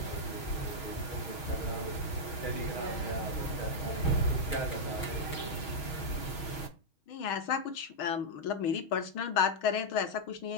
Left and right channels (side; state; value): right; late; 6.3 ms